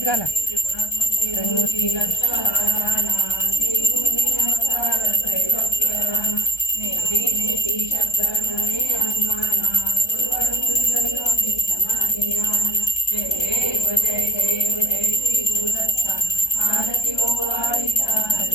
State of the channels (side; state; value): right; late; 1.2 ms